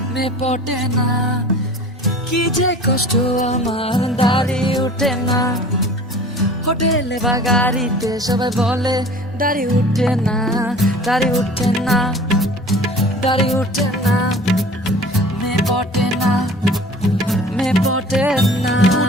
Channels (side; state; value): both; normal; correlation 0.44